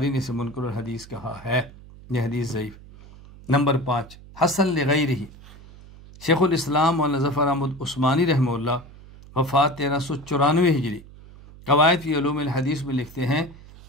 نے اسے منکر الحدیث کہا ہے، یہ حدیث ضعیف۔ نمبر 5 حسن لغیرہ، شیخ الاسلام مولانا ظفر احمد عثمانی رحمہ اللہ وفات 1394 ہجری، قواعد فی علوم الحدیث میں لکھتے ہیں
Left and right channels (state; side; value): noise; right; hum, 20 dB below the sound